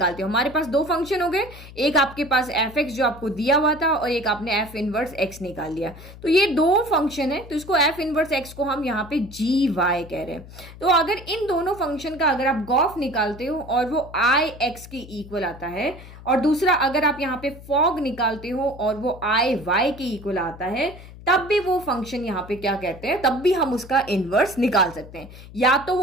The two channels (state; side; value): noise; left; hum, 17 dB below the sound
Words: हो, हमारे पास दो फंक्शन हो गए, एक आपके पास एफ एक्स जो आपको दिया हुआ था और एक आपने एफ इनवर्स एक्स निकाल लिया, तो ये दो फंक्शन है, तो इसको एफ इनवर्स एक्स को हम यहाँ पे जी वाई कह रहे हैं। तो अगर इन दोनों फंक्शन का अगर आप गॉफ निकालते हो और वो आई एक्स के इक्वल आता है, और दूसरा अगर आप यहाँ पे फॉग निकालते हो और वो आई वाई के इक्वल आता है, तब भी वो फंक्शन यहाँ पे क्या कहते हैं, तब भी हम उसका इनवर्स निकाल सकते हैं। या तो